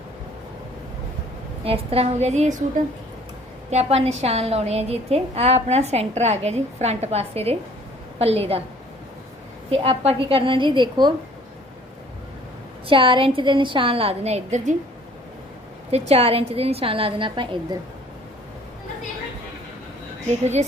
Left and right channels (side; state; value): both; normal; correlation 0.55